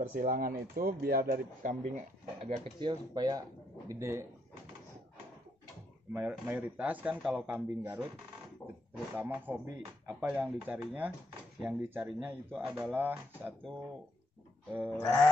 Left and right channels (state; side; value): normal; both; correlation 0.76